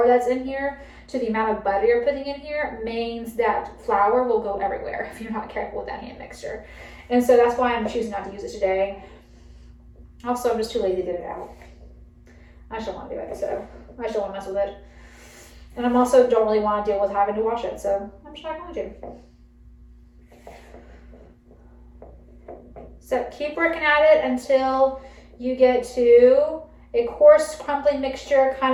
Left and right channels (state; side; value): identical; both; correlation 1.00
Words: that's in here to the amount of butter you're putting in here means that flour will go everywhere if you're not careful with that hand mixer. And so that's why I'm choosing not to use it today. Also, I'm just too lazy to get it out. I just don't want to do it, so I just don't want to mess with it. And I'm also don't really want to deal with having to wash it, so I'm just not going to. So keep working at it until you get to a coarse, crumbly mixture, kind